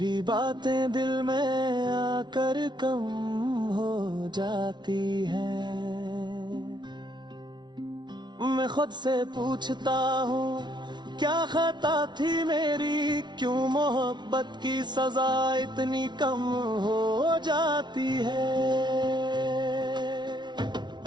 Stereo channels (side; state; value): left; late; 0.21 ms